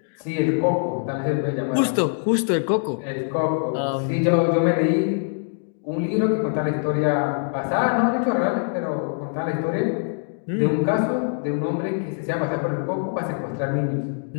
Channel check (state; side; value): silent; right; digital silence